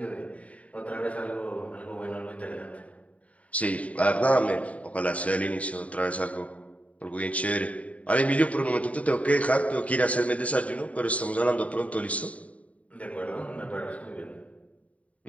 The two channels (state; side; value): late; right; 0.067 ms